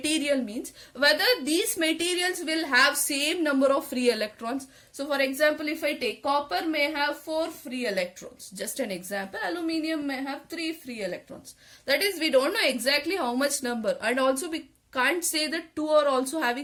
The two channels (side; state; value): both; identical; correlation 1.00